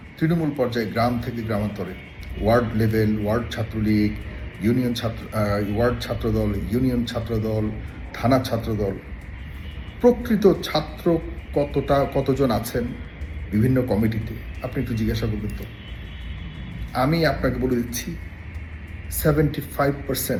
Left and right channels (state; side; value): identical; both; correlation 1.00